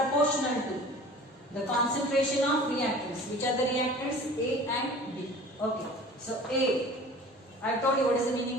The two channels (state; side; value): normal; both; correlation 0.43